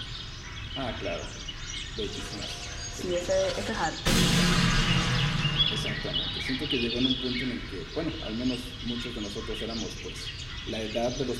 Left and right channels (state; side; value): identical; both; correlation 1.00